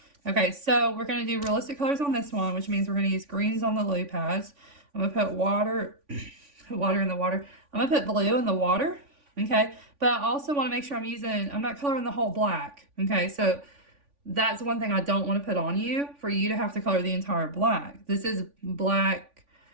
Okay, so we're going to do realistic colors on this one, which means we're going to use greens on the lily pads. I'm going to put water in the water. I'm going to put blue in the water, okay? But I also want to make sure I'm not coloring the whole black, okay? So that's one thing I don't want to put on you, for you to have to color the entire black. This is black,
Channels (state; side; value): late; left; 3.5 ms